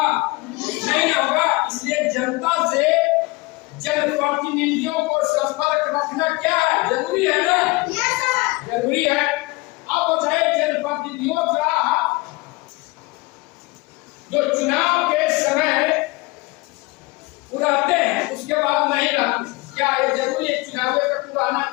नहीं होगा। इसलिए जनता से जनप्रतिनिधियों को संपर्क रखना क्या है? जरूरी है ना। जरूरी है। अब बताइए जनप्रतिनिधियों का जो चुनाव के समय रहते हैं उसके बाद नहीं रहते, क्या ये जरूरी है? चुनाव तक रहना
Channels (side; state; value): right; quieter; 23.9 dB